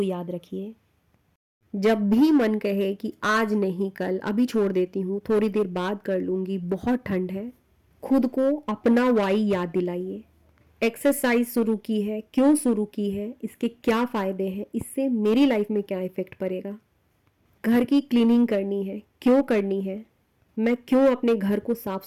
याद रखिए। जब भी मन कहे कि आज नहीं कल, अभी छोड़ देती हूँ, थोड़ी देर बाद कर लूंगी, बहुत ठंड है, खुद को अपना वाई याद दिलाइए। एक्सरसाइज शुरू की है, क्यों शुरू की है, इसके क्या फ़ायदे हैं, इससे मेरी लाइफ में क्या इफ़ेक्ट पड़ेगा। घर की क्लीनिंग करनी है, क्यों करनी है, मैं क्यों अपने घर को साफ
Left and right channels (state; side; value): identical; both; correlation 1.00